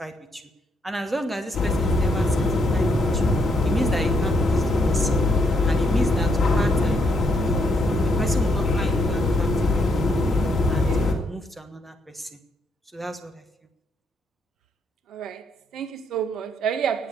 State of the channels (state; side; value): normal; both; correlation 0.75